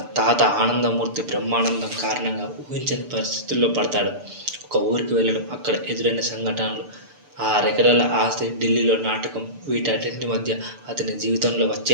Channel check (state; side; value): late; left; 6.9 ms